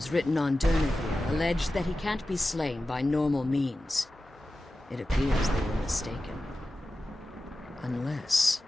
written on Durnevere allege that he can't be slain by normal means. It appears they were mistaken. Unless...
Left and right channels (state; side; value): normal; both; correlation 0.94